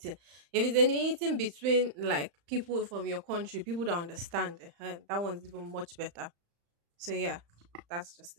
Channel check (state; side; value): late; left; 35 ms